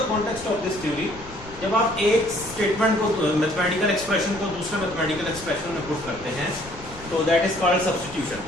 context of this theory? जब आप एक स्टेटमेंट को, मैथमेटिकल एक्सप्रेशन को दूसरे मैथमेटिकल एक्सप्रेशन में पुट करते हैं तो दैट इज कॉल्ड सब्स्टिट्यूशन।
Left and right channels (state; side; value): noise; left; rumble, 16 dB below the sound